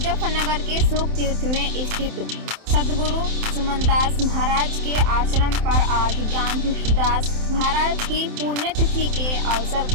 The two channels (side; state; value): left; late; 27 ms